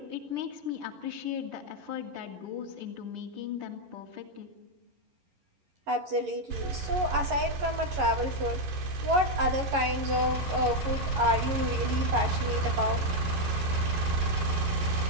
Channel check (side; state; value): left; late; 11 ms